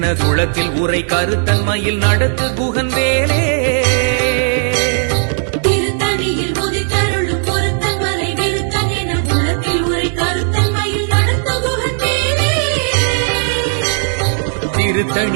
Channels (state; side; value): silent; left; 59 dB below the other